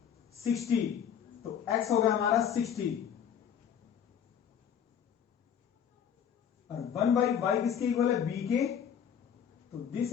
तो x हो गया हमारा 60, और 1/y किसके इक्वल है b के, तो this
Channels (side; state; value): right; quieter; 8.4 dB